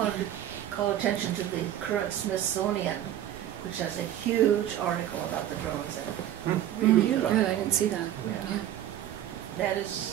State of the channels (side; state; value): left; quieter; 11.8 dB